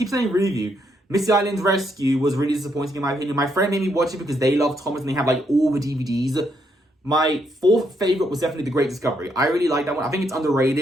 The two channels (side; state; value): both; normal; correlation 0.76